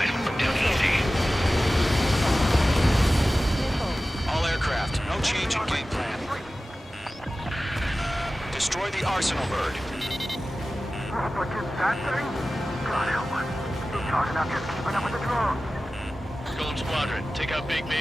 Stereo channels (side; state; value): both; normal; correlation 0.96